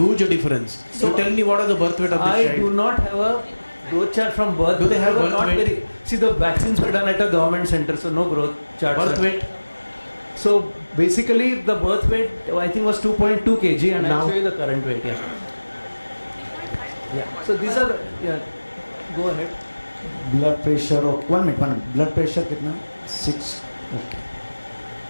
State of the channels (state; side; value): inverted; both; correlation -1.00